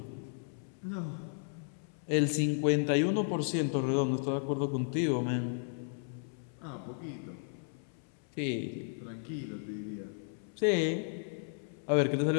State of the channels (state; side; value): silent; right; 55 dB below the other